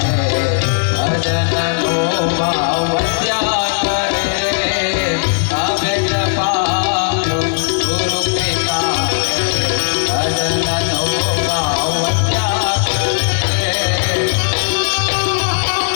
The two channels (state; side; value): silent; right; 59 dB below the other